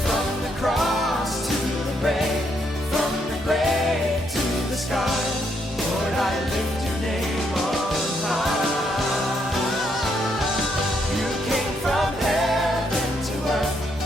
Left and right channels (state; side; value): normal; both; correlation 0.75